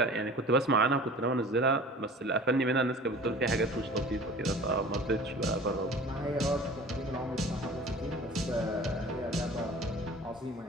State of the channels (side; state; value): both; normal; correlation 0.42